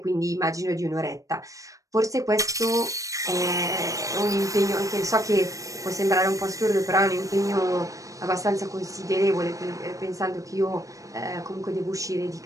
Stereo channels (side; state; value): left; late; 0.16 ms